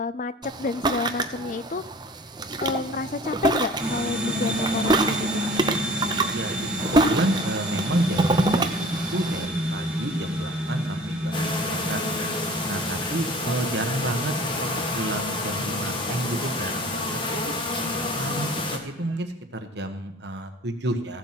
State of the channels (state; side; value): normal; both; correlation 0.46